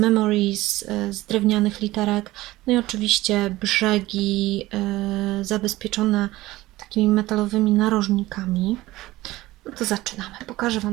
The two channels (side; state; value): left; quieter; 17.8 dB